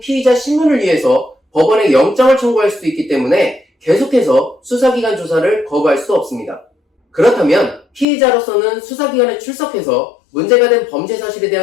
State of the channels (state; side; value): drops out; right; at 8.1 s